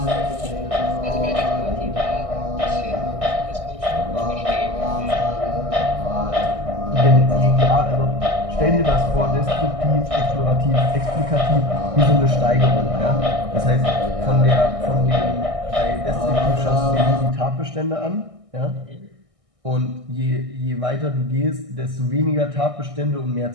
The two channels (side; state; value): left; late; 1.6 ms